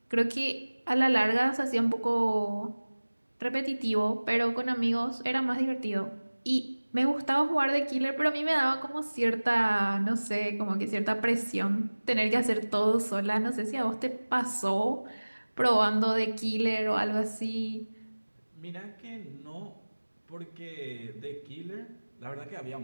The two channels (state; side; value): inverted; both; correlation -1.00